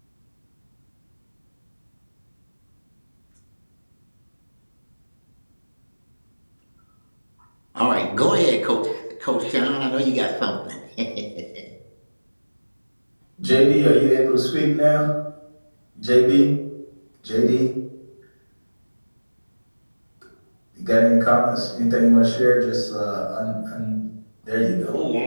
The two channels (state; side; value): inverted; both; correlation -1.00